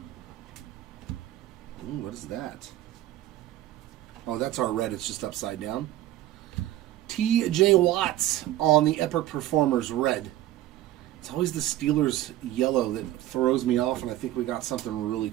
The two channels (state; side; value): quieter; left; 14.4 dB